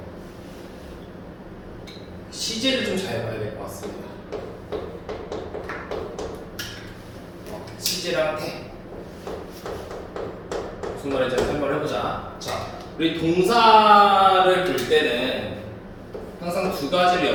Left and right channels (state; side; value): identical; both; correlation 1.00